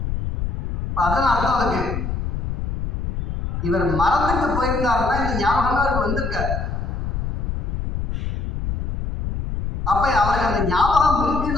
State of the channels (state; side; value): noise; left; rumble, 3 dB below the sound